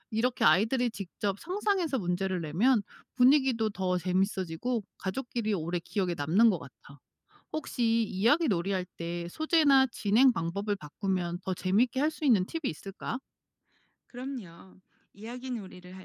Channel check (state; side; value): identical; both; correlation 1.00